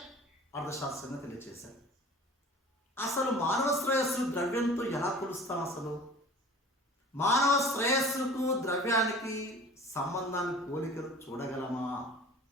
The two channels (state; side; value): normal; both; correlation 0.43